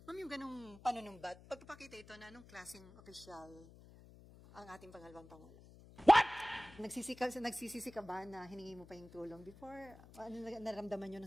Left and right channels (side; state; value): left; noise; hum, 20 dB below the sound